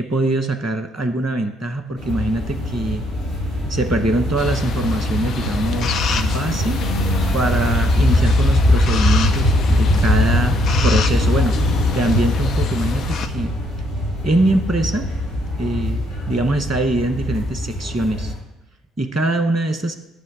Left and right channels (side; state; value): both; normal; correlation 0.71